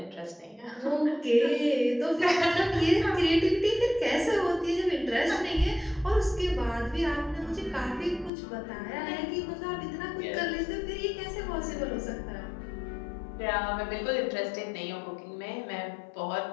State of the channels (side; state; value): right; drops out; at 8.3 s